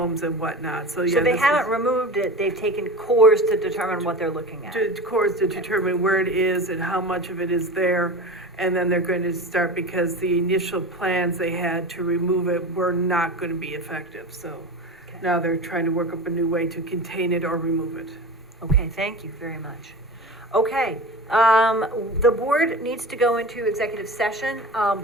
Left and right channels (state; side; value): normal; both; correlation 0.31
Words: and whatnot, so yeah. So they this haven't is- removed it, they've taken cores to determine what they're looking at. To cores to determine where it is and how much of it is there, and then they're going to start, because the initial plans they had to remove it were not going to be effective, so Okay. now they're trying to work up a new way to contain it or remove it. Okay, thank you very much. Okay, the board needs to go into executive session,